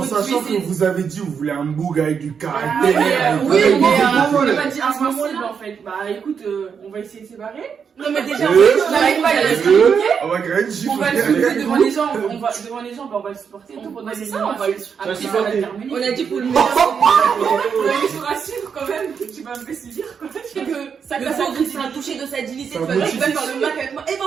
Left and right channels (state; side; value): quieter; left; 6.7 dB